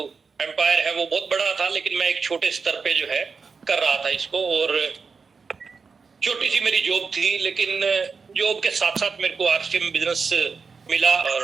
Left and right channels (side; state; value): left; quieter; 5.1 dB